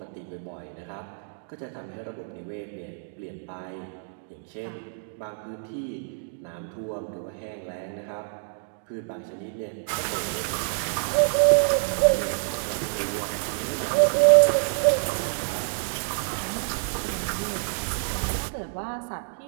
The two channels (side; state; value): left; silent; digital silence